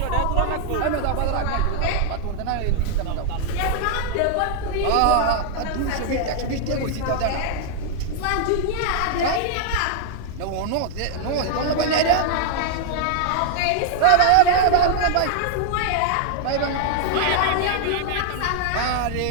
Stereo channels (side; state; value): both; different; correlation 0.00